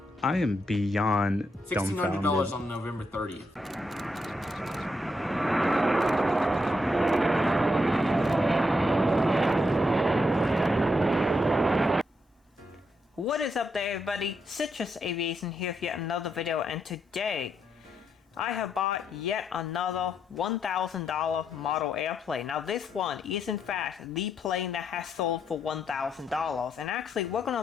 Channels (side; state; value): both; normal; correlation 0.79